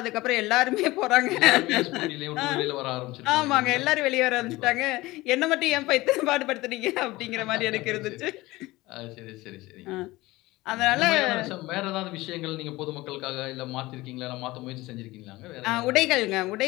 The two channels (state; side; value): quieter; right; 19.7 dB